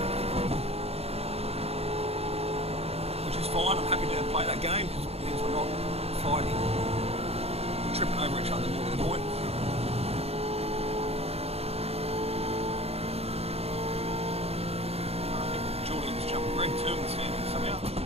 Which is fine, I'm happy to play that game because it means we're not fighting and tripping over each other more to the point. I think Julian's jumped Greg too in the standings somehow.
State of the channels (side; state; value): left; late; 0.29 ms